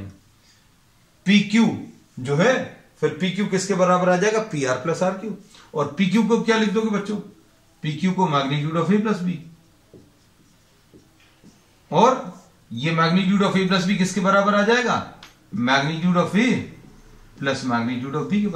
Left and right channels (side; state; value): both; identical; correlation 1.00